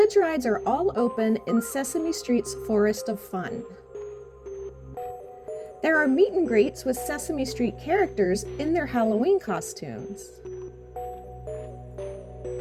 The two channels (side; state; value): both; identical; correlation 1.00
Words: rides are all open in Sesame Street's Forest of Fun. There are meet and greets with Sesame Street characters in their Halloween costumes.